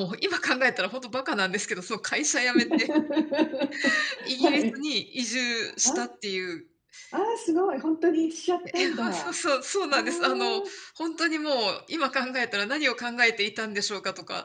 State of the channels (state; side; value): identical; both; correlation 1.00